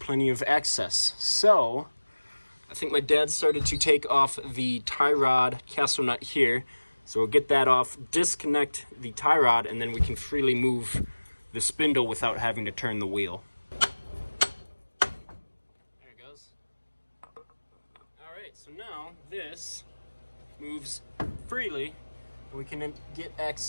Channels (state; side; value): inverted; both; correlation -1.00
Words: of access. So I think my dad started to take off the tie rod castle nut here. So we'll get that off, disconnect the tie rod, and then we can freely move the spindle without having to turn the wheel. There it goes. All right, so now this moves freely, and we can get